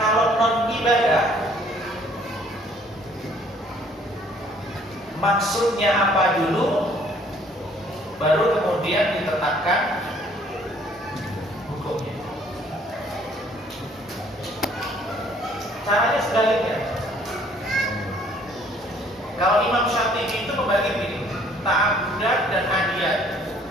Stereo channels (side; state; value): both; normal; correlation 0.60